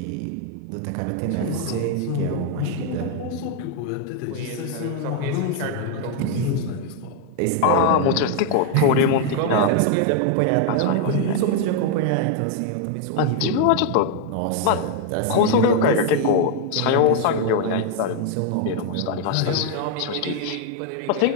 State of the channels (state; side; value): different; both; correlation 0.00